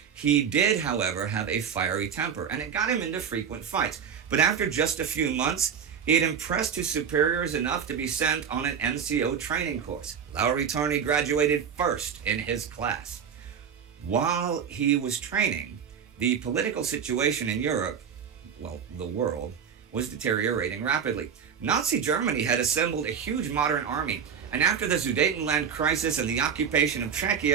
He did, however, have a fiery temper, and it got him into frequent fights. But after just a few months, he had impressed his superiors enough to be sent on an NCO training course. Lauri Törni graduated first in his class. While he was training, the political situation in Europe, well, the world, was deteriorating rapidly. Nazi Germany had assembled a huge modern army, and after the Sudetenland crisis and the occupation of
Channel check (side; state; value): left; quieter; 7.4 dB